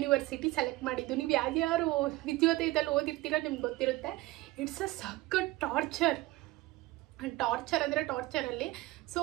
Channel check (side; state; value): left; quieter; 18.8 dB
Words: ಸೆಲೆಕ್ಟ್ ಮಾಡಿದ್ದು. ನೀವು ಯಾರ್ಯಾರು ವಿದ್ಯೋದಯದಲ್ಲಿ ಓದಿರ್ತೀರೋ ನಿಮ್ಗೆ ಗೊತ್ತಿರುತ್ತೆ. ಇಟ್ಸ್ ಅ ಸಖತ್ ಟಾರ್ಚರ್ ಅಂದರೆ ಟಾರ್ಚರಲ್ಲಿ. ಸೊ